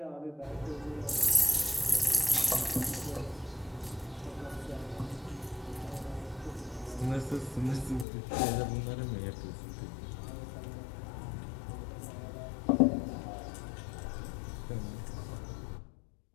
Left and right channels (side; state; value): right; drops out; at 8.1 s